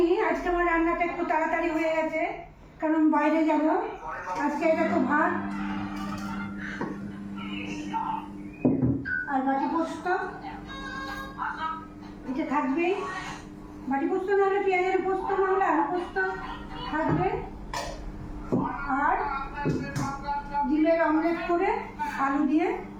আজকে আমার রান্নাটা একটু তাড়াতাড়ি হয়ে গেছে, কারণ বাইরে যাব। আজকে এটা তো ভাত আর বাটি পোস্ত, এটা থাকবেই। বাটি পোস্ত নাহলে পেঁয়াজের পোস্ত, নাহলে আলু পোস্ত থাকবে। আর ডিমের অমলেট করে আলু দিয়ে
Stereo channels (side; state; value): both; identical; correlation 1.00